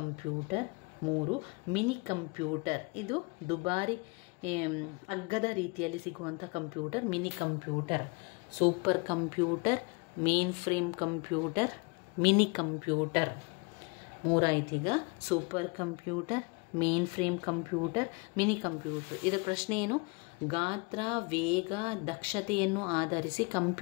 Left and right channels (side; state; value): right; quieter; 30.3 dB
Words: 3 mini computer. ಇದು ದುಬಾರಿ ಅಗ್ಗದ ರೀತಿಯಲ್ಲಿ ಸಿಗುವಂಥ computer, mini computer. Super computer, mainframe computer, mini computer. 3 ಆಯ್ತೀಗ: super computer, mainframe computer, mini computer. ಇದರ ಪ್ರಶ್ನೆ ಏನು? ಗಾತ್ರ, ವೇಗ, ದಕ್ಷತೆಯನ್ನು ಆಧರಿಸಿ